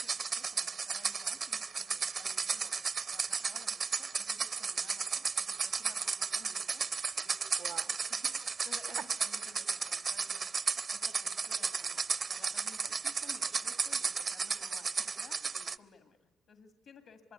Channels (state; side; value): quieter; left; 4.8 dB